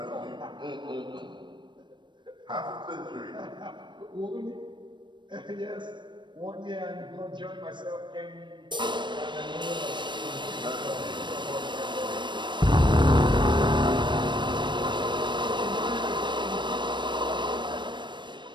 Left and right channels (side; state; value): left; late; 0.22 ms